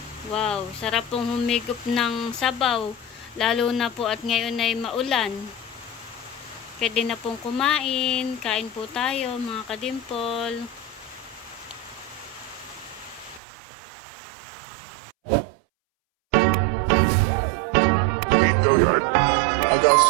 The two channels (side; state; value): left; drops out; at 13.4 s